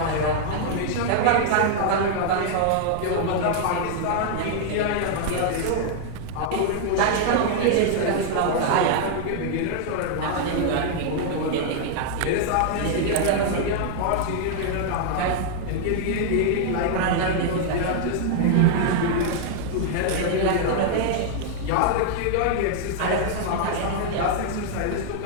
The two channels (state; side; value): different; both; correlation -0.01